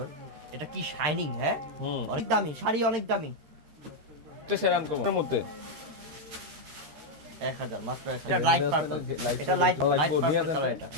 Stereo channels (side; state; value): left; late; 13 ms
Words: এটা কি শাইনিং। হ্যাঁ অনেক দামি শাড়ি অনেক দামি একটা শাড়ি আনকমন এর মধ্যে 1000 মাত্র 1000 এটা লাইট পার্পল এটা লাইট পার্পল কালার এটা